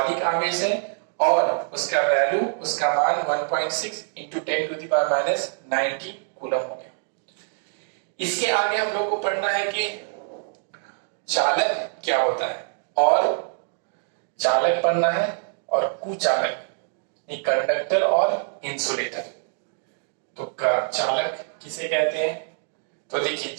आवेश है और उसका वैल्यू, उसका मान 1.6 इंटू 10⁻⁻19 कूलम हो गया। इसके आगे हम लोग को पढ़ना है कि चालक क्या होता है, और चालक पढ़ना है, और कुचालक, कंडक्टर और इंसुलेटर। तो चालक किसे कहते हैं, तो देखिए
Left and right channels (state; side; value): silent; left; digital silence